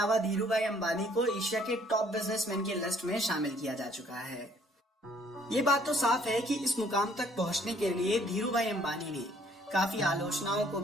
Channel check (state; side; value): normal; both; correlation 0.62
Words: धीरूभाई अंबानी को एशिया के टॉप बिजनेसमैन की लिस्ट में शामिल किया जा चुका है। ये बात तो साफ है कि इस मुकाम तक पहुंचने के लिए धीरूभाई अंबानी ने काफी आलोचनाओं को